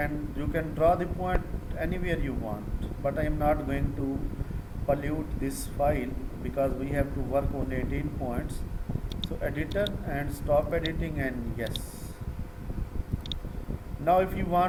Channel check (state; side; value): identical; both; correlation 1.00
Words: you can draw the point anywhere you want, but I am not going to pollute this file because we have to work on 18 points. So editor and stop editing, and yes. Now if you